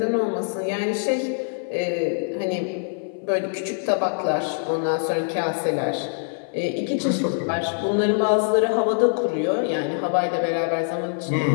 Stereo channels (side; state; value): right; silent; 63 dB below the other